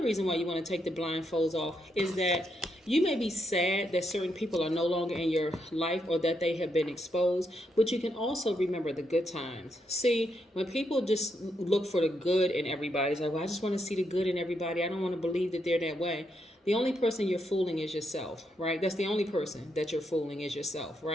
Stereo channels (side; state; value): both; normal; correlation 0.80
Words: reason why you want to take the blindfolds off is that you may be sad that certain people are no longer in your life or that they have been exposed, but you can also remember the good times. See, when people just look for the good in everybody, it's like, well, I just want to see the good in everybody. I don't want to believe that they're that way. The only person you're fooling is yourself, right? That's the only person that you're fooling is yourself,